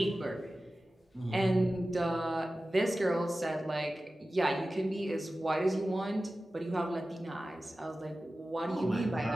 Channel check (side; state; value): both; normal; correlation 0.95